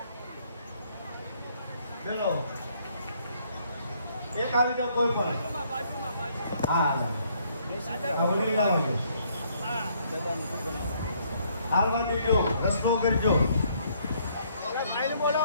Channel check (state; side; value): inverted; both; correlation -0.67